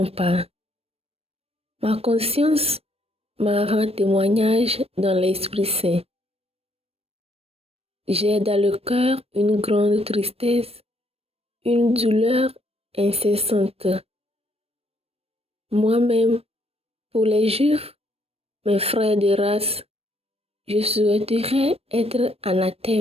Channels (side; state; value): left; late; 0.28 ms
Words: pas. Ma conscience m'en rend témoignage dans l'Esprit Saint. J'ai dans le cœur une grande tristesse, une douleur incessante. Moi-même, pour les Juifs, mes frères de race, je souhaiterais être